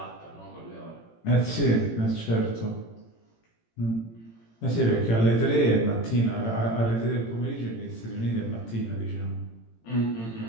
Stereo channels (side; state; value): right; late; 18 ms